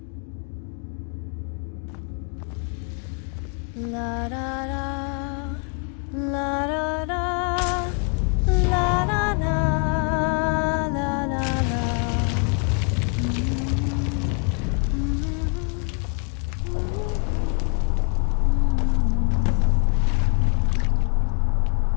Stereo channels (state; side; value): quieter; right; 38.2 dB